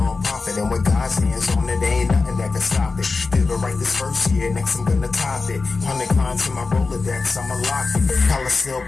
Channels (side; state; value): right; quieter; 4.1 dB